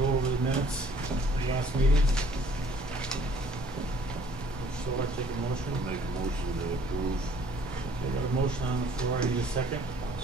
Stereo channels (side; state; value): both; normal; correlation 0.57